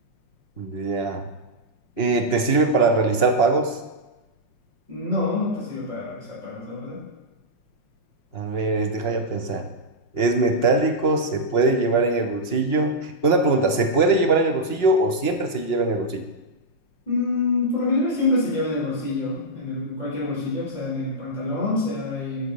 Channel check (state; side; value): late; right; 5.6 ms